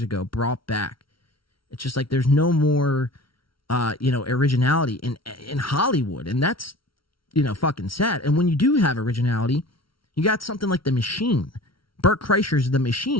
ago brought back. It's just like there's no more, originality in Hollywood, and that's, fucking sad. And when you do have originality, you got something like The Machine, Burt Kreischer's The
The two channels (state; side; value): late; right; 0.74 ms